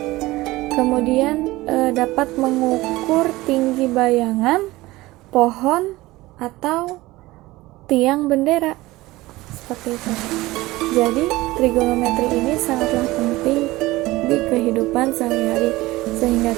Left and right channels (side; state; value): left; quieter; 19.1 dB